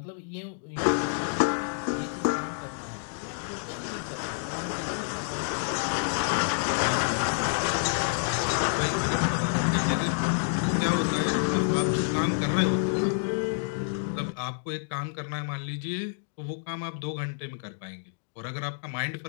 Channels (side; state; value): right; silent; digital silence